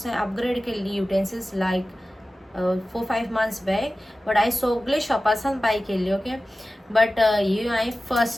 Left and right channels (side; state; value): both; normal; correlation 0.96